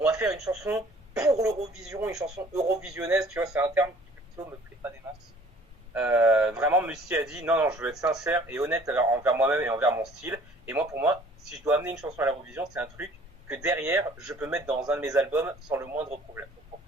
va faire une chanson pour l'Eurovision, une chanson eurovisionnaise, tu vois, c'est un terme qui plutôt me plaît pas des masses. Vraiment, Musti a dit non, je veux être sincère et honnête envers moi-même et envers mon style. Et moi, pour moi, si je dois amener une chanson à l'Eurovision, c'est un truc que derrière, je peux mettre dans un de mes albums sans le moindre problème. Donc, pour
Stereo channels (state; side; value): normal; both; correlation 0.54